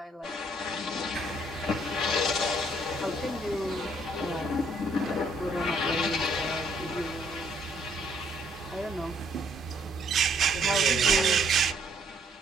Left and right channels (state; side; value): normal; both; correlation 0.66